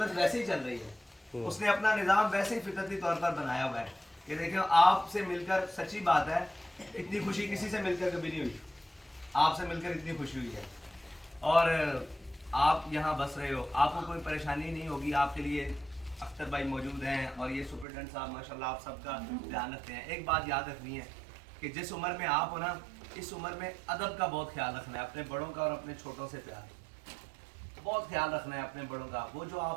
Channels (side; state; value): left; drops out; at 17.9 s